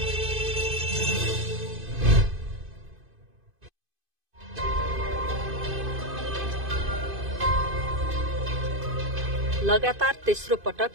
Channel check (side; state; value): left; late; 2.5 ms